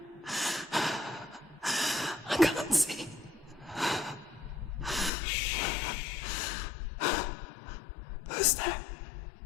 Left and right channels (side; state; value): right; drops out; at 5.1 s